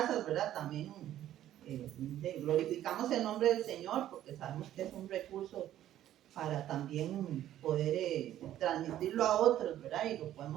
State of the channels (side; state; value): left; quieter; 12.4 dB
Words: ¿verdad? También glorificamos el nombre del Señor porque sabemos que es un recurso para también poder transmitirlo a otros, ¿verdad? Y lo